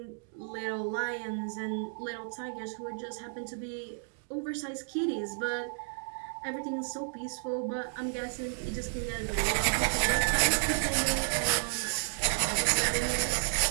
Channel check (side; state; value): left; silent; digital silence